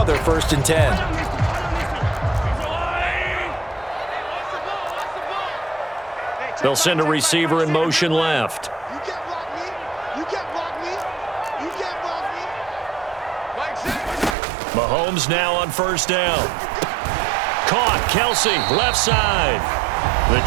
1st and 10. They'll send a receiver in motion left. Mahomes now on first down. Caught. Kelsey, left side. The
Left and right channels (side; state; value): left; drops out; at 14.4 s